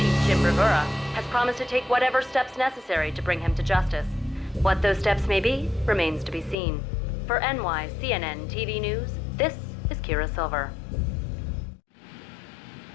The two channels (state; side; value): drops out; right; at 6.6 s